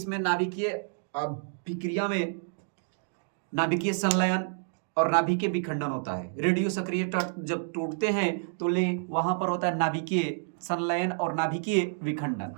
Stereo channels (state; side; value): silent; left; digital silence